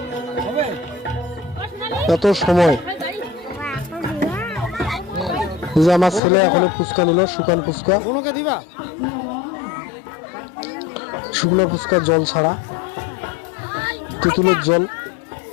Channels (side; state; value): right; drops out; at 6.2 s